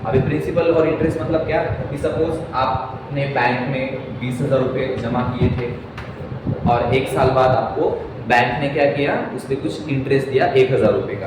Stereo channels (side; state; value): both; identical; correlation 1.00